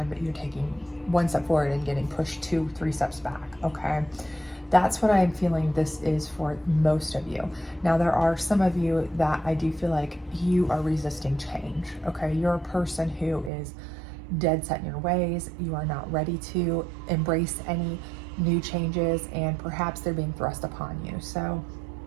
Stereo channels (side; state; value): left; drops out; at 13.5 s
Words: but you're taking one step forward and getting pushed 2-3 steps back, okay? That's what I'm feeling this is for most of you. Now, there are some of you that I do feel like you are resisting change, okay? You're a person who is dead set in your ways. You are not ready to embrace any new changes, and perhaps they're being thrust upon you. So,